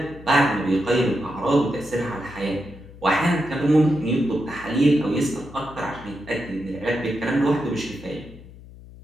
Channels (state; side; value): noise; left; hum, 19 dB below the sound